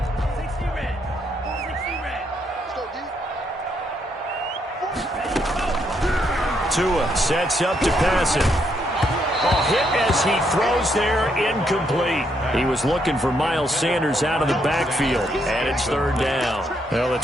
Tua sets up to pass it. Hit as he throws there, incomplete. He was looking for Miles Sanders out of the backfield, and it's third down. Well, the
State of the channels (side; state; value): both; normal; correlation 0.75